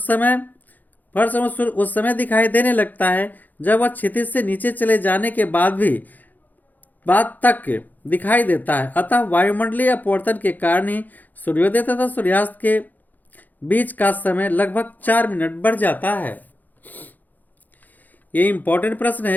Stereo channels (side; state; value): right; late; 0.084 ms